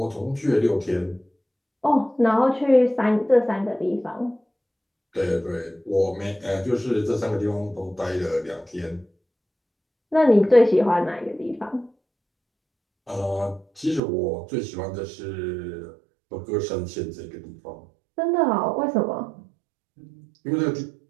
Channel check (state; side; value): drops out; left; at 14.0 s